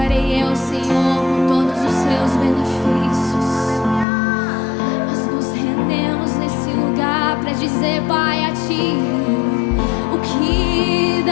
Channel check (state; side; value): drops out; right; at 4.0 s